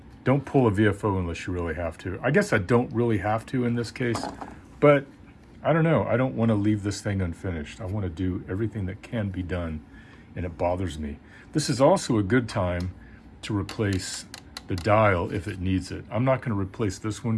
don't pull a VFO unless you really have to. I guess I don't really have to in this case, but I don't know. I don't want to leave this thing unfinished. I want to do everything that can be done, and it bothers me. This is also a good time to replace the dial if it needs it. I'm not going to replace this one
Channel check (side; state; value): both; identical; correlation 1.00